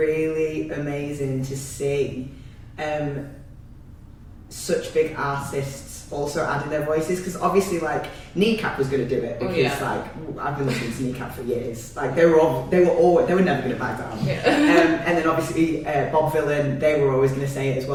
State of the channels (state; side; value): identical; both; correlation 1.00